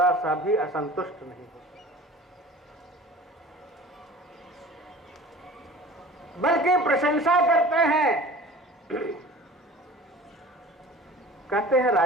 सा भी असंतुष्ट नहीं होते, बल्कि प्रशंसा करते हैं। कहते हैं,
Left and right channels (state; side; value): normal; both; correlation 0.42